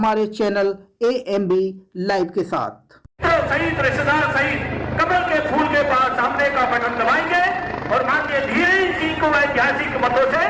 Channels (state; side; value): identical; both; correlation 1.00